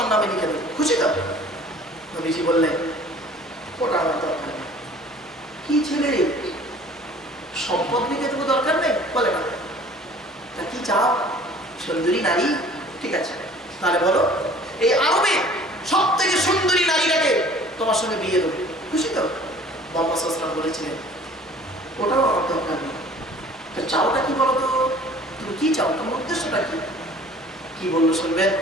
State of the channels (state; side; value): normal; both; correlation 0.50